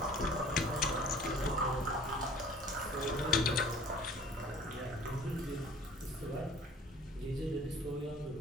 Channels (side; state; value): both; normal; correlation 0.49